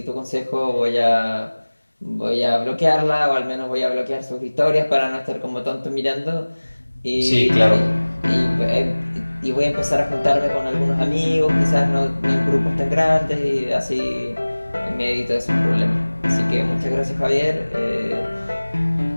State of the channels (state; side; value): inverted; both; correlation -1.00